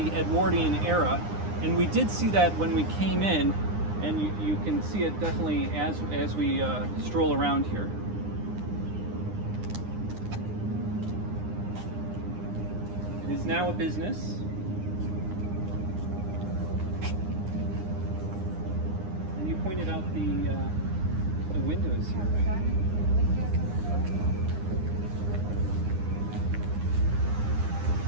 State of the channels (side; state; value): left; late; 9.8 ms